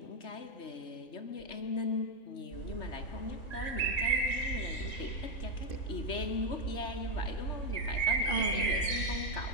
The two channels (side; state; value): right; late; 3.3 ms